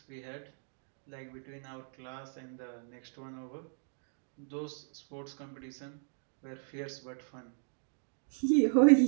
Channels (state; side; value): silent; left; digital silence